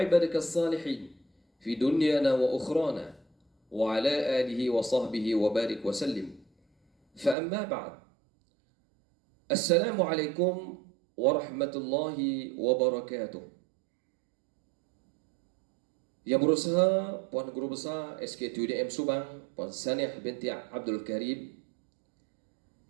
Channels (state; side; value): drops out; left; at 7.4 s